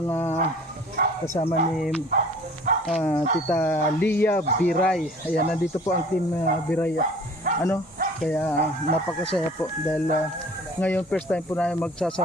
kasama ni Tita Lia Biray. Ayan, nandito po ang team Biray. Kaya napakasaya po dahil ngayon first time po namin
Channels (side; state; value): both; normal; correlation 0.49